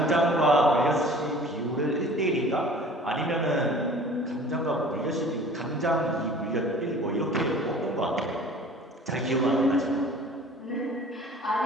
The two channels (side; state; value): both; normal; correlation 0.46